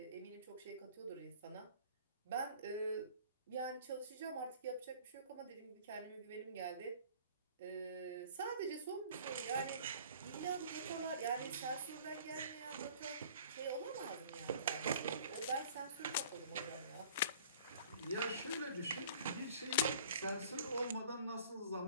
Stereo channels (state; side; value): inverted; both; correlation -0.49